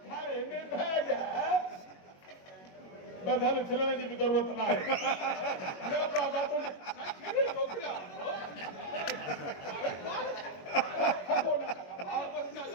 घर में बैग बस हल छिलने की भी जरूरत ना है न बाबा तो खेले मोकला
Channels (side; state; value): right; late; 21 ms